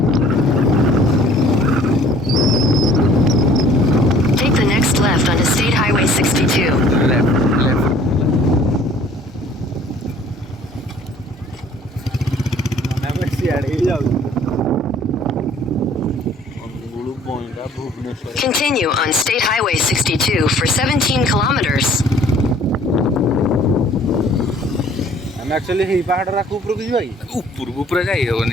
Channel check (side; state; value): both; normal; correlation 0.55